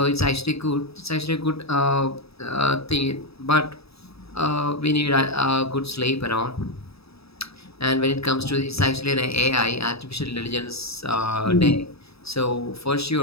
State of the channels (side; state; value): right; late; 0.78 ms